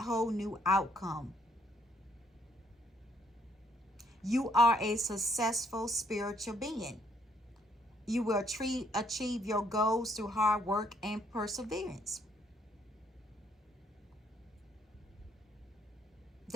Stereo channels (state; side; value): normal; both; correlation 0.69